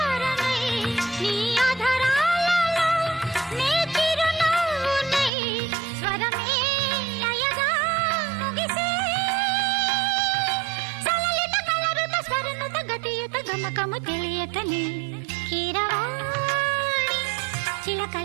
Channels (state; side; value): drops out; left; at 5.3 s